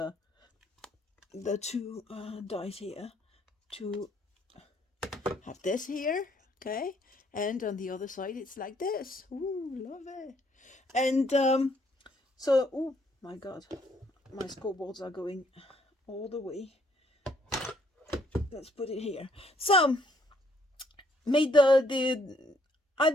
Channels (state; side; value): normal; both; correlation 0.67